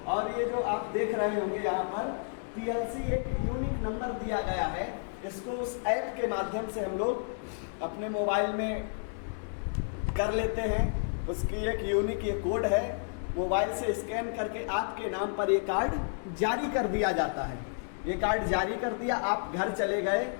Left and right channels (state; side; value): silent; right; digital silence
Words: और ये जो आप देख रहे होंगे यहाँ पर PLC एक यूनिक नंबर दिया गया है। इसको उस ऐप के माध्यम से हम लोग अपने मोबाइल में कर लेते हैं। उसकी एक यूनिक ये कोड है, मोबाइल से स्कैन करके आपके नाम पर ये कार्ड जारी कर दिया जाता है। ये कार्ड जारी कर दिया, आप घर चले गए।